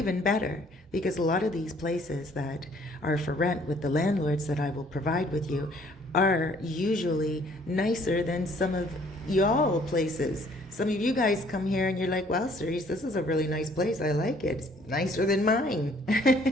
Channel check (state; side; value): normal; both; correlation 0.60